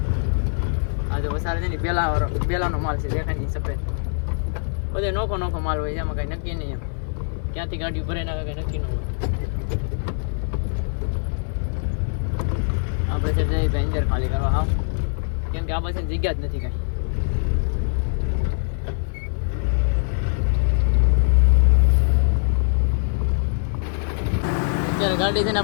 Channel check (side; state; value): right; silent; 58 dB below the other